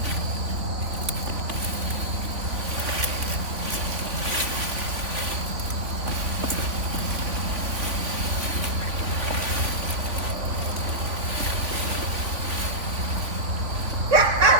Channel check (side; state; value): left; late; 3.5 ms